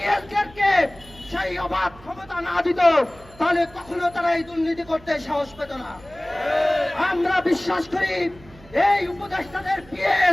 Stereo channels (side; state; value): right; noise; hum, 23 dB below the sound